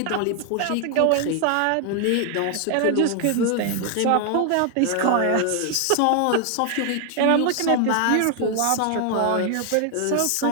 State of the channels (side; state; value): both; different; correlation 0.00